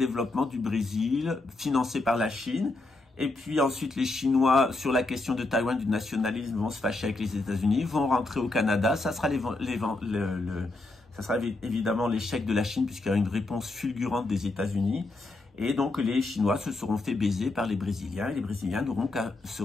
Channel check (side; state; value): right; quieter; 3.0 dB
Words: du Brésil financé par la Chine. Et puis ensuite les Chinois, sur la question de Taïwan, du nationalisme, vont se fâcher avec les États-Unis, vont rentrer au Canada. Ça sera ça sera évidemment l'échec de la Chine, puisqu'il y a une réponse fulgurante des États-Unis. Et donc les Chinois se seront fait baiser par les Brésiliens. Et les Brésiliens n'auront qu'à se